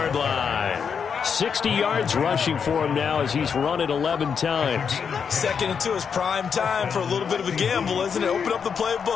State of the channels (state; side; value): quieter; right; 6.6 dB